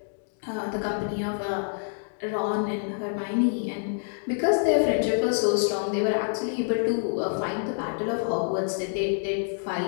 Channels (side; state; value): right; silent; digital silence